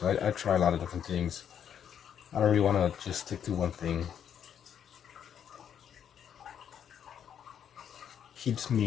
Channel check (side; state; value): right; quieter; 8.8 dB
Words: I try a lot of different things. I don't really want to just stick to one thing. Keeps